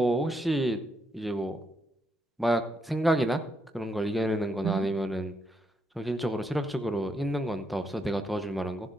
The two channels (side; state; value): both; normal; correlation 0.78